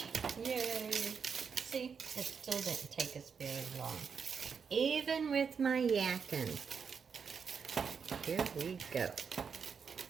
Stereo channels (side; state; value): left; quieter; 6.2 dB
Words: Yay! See, it still didn't take us very long. Even with my yakking. Here we go.